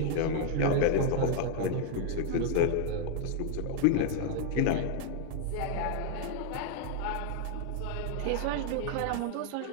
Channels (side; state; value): both; different; correlation 0.00